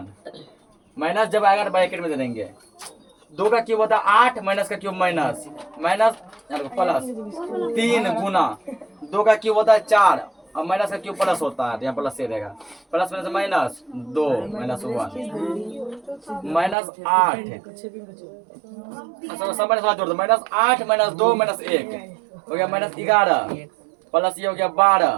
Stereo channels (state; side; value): drops out; left; at 16.8 s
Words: माइनस जब आएगा ब्रैकेट में दे देंगे। 2 का क्यूब होता है 8, माइनस का क्यूब माइनस प्लस 3 गुना 2 का क्यूब होता है 4 और माइनस का क्यूब प्लस होता है, तो यहाँ प्लस से रहेगा। प्लस माइनस -2 -1 -8 सब माइनस जोड़ दो, -8 -2 -1 हो गया -11 प्लस ये हो गया